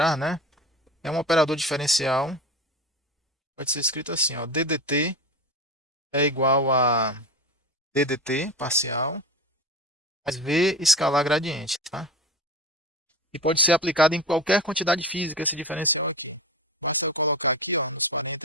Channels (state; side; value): normal; both; correlation 0.27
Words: né? É um operador diferencial, pode ser escrito assim, ó, ddt é igual a ddt parcial mais v escalar gradiente, tá? E pode ser aplicado em qualquer quantidade física esse diferencial aqui. Basta eu colocar aqui, ó, nos